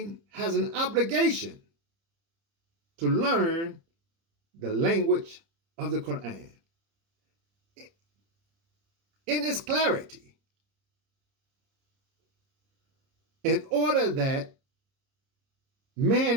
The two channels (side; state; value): left; late; 30 ms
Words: has an obligation to learn the language of the Qur'an in its clarity, in order that